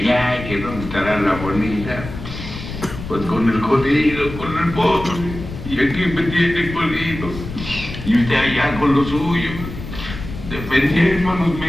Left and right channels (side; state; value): left; noise; rumble, 10 dB below the sound